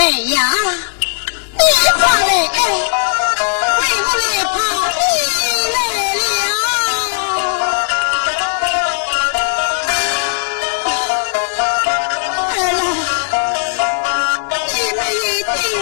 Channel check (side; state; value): right; silent; digital silence